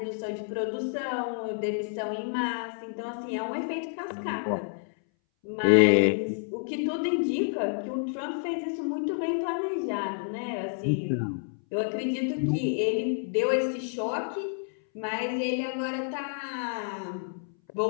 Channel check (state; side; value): silent; right; 58 dB below the other